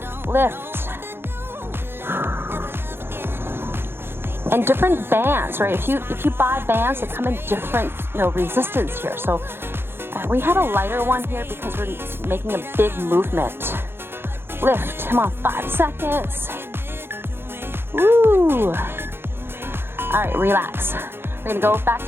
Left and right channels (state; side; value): late; left; 0.11 ms